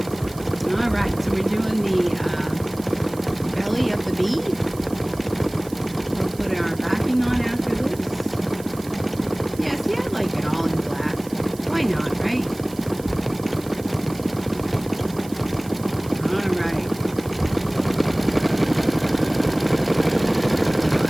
we're doing the belly of the bee. We'll put our backing on after this. Yeah, see, I like it all in black. Why not, right? All right.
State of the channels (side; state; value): right; noise; hiss, 19 dB below the sound